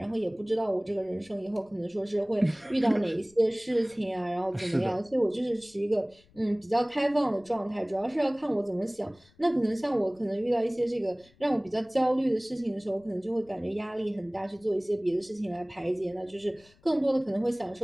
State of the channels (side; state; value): left; noise; rumble, 30 dB below the sound